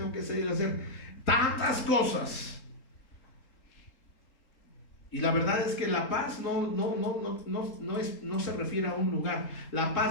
que salir a hacer tantas cosas. Y la verdad es que la paz no se refiere a un lugar. La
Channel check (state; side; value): late; right; 3.8 ms